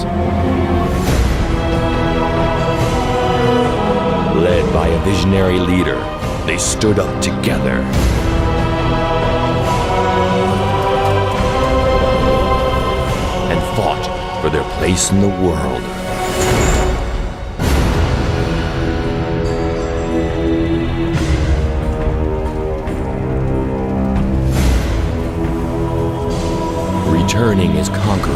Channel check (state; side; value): identical; both; correlation 1.00